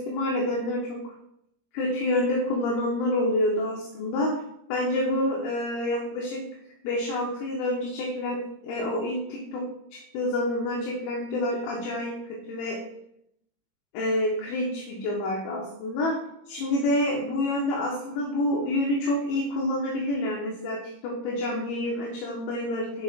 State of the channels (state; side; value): late; right; 21 ms